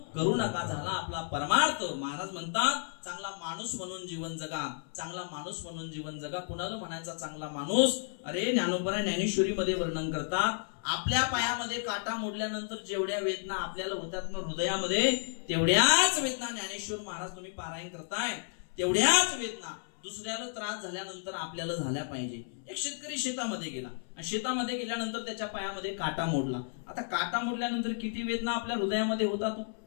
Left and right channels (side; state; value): right; silent; 56 dB below the other